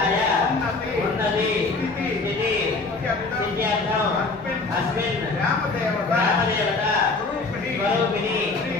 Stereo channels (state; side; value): quieter; right; 3.7 dB